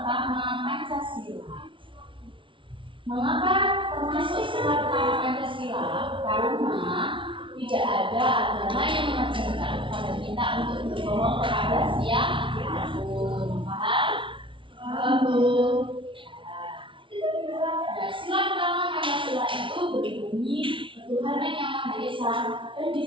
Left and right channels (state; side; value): late; left; 0.25 ms